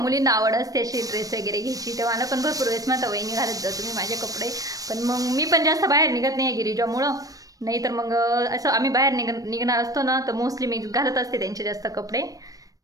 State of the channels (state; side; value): late; left; 0.17 ms